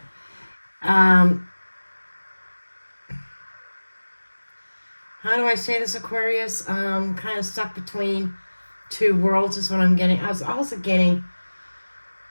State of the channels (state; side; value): inverted; both; correlation -1.00